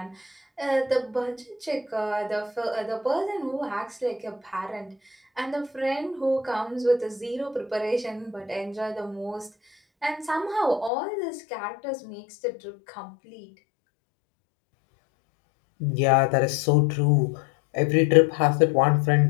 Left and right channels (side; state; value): right; drops out; at 10.9 s